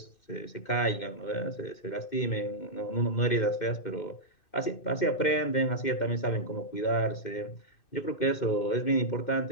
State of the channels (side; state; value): right; late; 2.6 ms